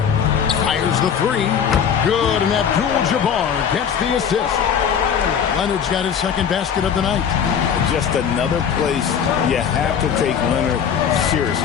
fires the 3. Good, and Abdul-Jabbar gets the assist. Leonard's got his second basket of the night. Just another place you have to take Leonard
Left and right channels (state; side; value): quieter; right; 7.6 dB